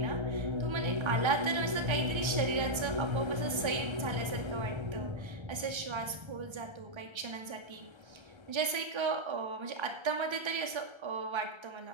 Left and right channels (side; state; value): left; late; 1.3 ms